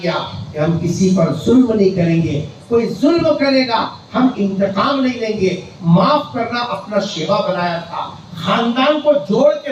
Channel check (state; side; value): identical; both; correlation 1.00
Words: کہ ہم کسی پر ظلم نہیں کریں گے، کوئی ظلم کرے گا ہم انتقام نہیں لیں گے، معاف کرنا اپنا شیوا بنایا تھا، خاندان کو جوڑ کے